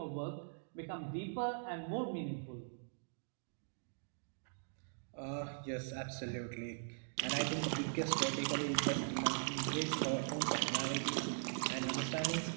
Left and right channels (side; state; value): left; silent; digital silence